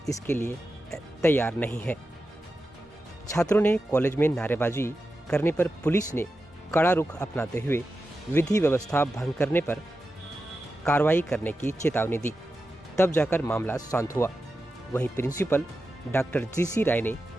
इसके लिए तैयार नहीं है। छात्रों ने कॉलेज में नारेबाजी करने पर पुलिस ने कड़ा रुख अपनाते हुए विधि व्यवस्था भंग करने पर कार्रवाई करने की चेतावनी दी। तब जाकर मामला शांत हुआ। वहीं प्रिंसिपल डॉक्टर GC राय ने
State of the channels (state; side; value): normal; both; correlation 0.91